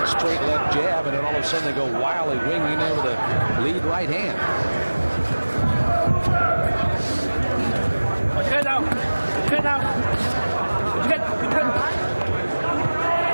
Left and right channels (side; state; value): both; inverted; correlation -1.00